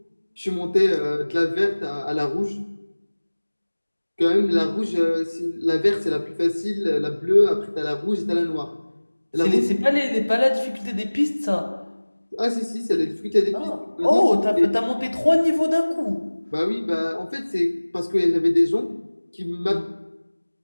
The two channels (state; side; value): inverted; both; correlation -1.00